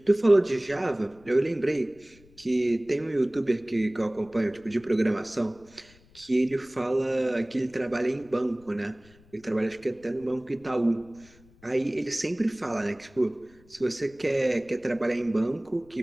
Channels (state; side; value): noise; left; rumble, 27 dB below the sound